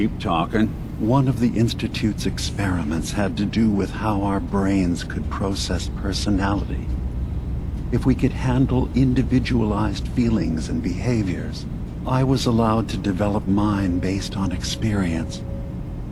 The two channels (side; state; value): both; identical; correlation 1.00